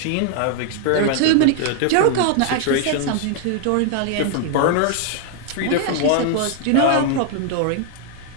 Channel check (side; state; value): both; different; correlation 0.00